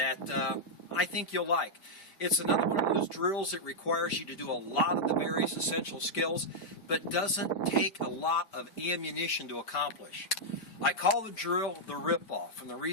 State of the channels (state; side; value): late; right; 4.5 ms